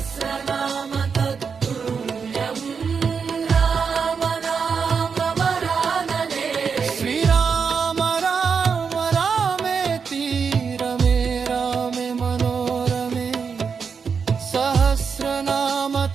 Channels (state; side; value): quieter; left; 5.9 dB